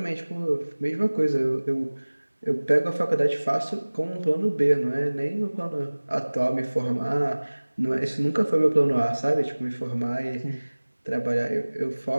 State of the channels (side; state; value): both; inverted; correlation -1.00